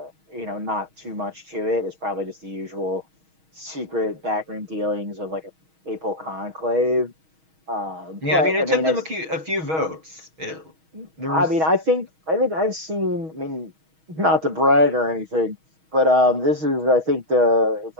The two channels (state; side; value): late; left; 6.3 ms